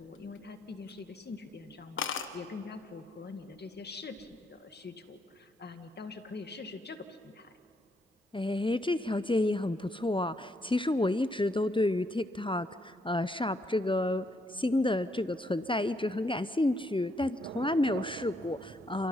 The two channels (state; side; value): normal; both; correlation 0.74